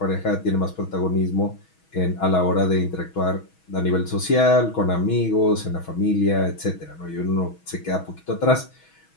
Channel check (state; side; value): late; right; 6.2 ms